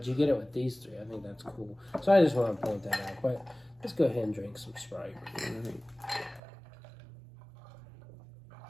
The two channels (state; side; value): drops out; left; at 6.4 s